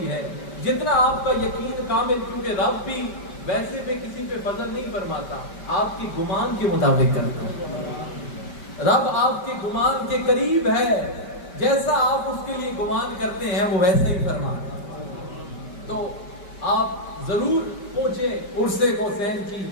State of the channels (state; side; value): late; right; 5.2 ms